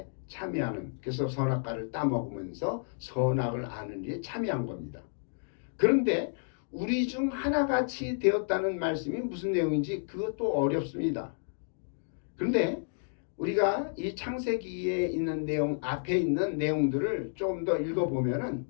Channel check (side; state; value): right; silent; digital silence